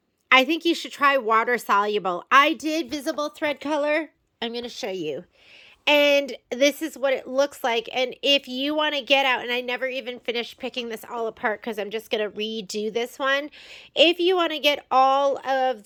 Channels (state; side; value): identical; both; correlation 1.00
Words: I think you should try water-soluble. I did visible thread color. I'm going to show you. And this is what it looks like. And if you want to get out, and I never even finished picking this all apart because I'm just going to redo this one. If you want to get all of